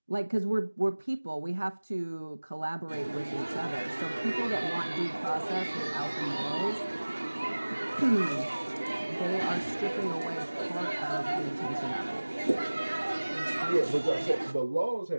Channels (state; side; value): inverted; both; correlation -1.00